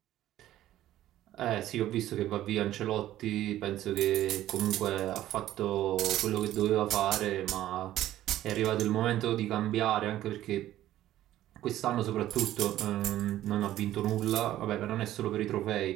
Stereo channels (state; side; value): quieter; left; 13.5 dB